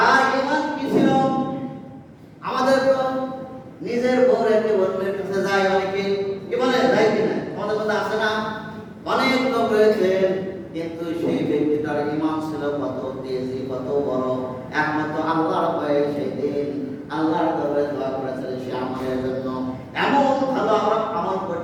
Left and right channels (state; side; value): identical; both; correlation 1.00